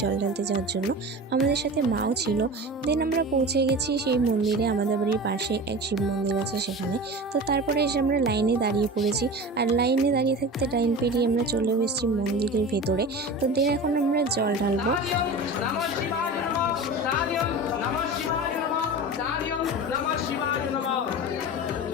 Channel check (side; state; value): both; normal; correlation 0.32